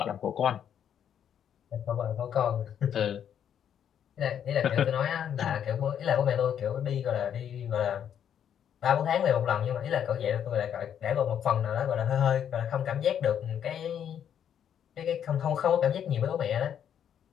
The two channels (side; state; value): right; quieter; 9.1 dB